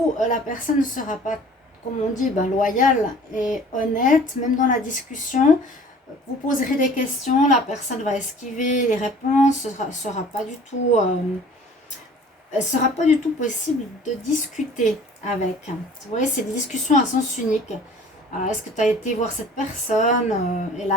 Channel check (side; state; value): both; normal; correlation 0.49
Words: la personne ne sera pas, comme on dit, loyale et honnête. Même dans la discussion, vous poserez des questions, la personne va esquiver les réponses. Ce sera pas du tout... sera pas du tout possible de discuter avec. Vous voyez, c'est des discussions à sens unique. Est-ce que tu as été voir cette personne et